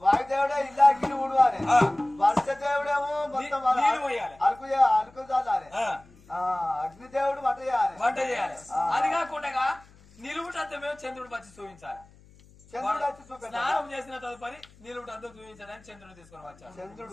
వాయుదేవుడే ఇల్లాగిలు ఊడవాలి వర్ష దేవుడేమో మొత్తం అలుకు చాలాలి అగ్నిదేవుడు వంట చేయాలి అది కాకుండా నిలువుటంతా మేము చంద్రుడు వచ్చి చూపించాలి స్నానం చేసిన తదుపరి నిలువుటంతా చూపించడానికి చంద్రుడు తీసుకొని వచ్చాడు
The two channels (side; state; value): left; noise; hum, 26 dB below the sound